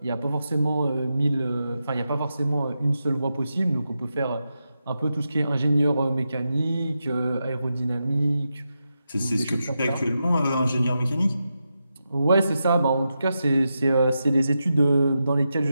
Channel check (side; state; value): both; inverted; correlation -0.88